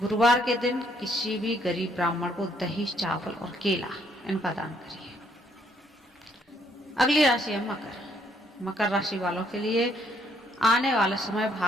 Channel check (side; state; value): both; normal; correlation 0.68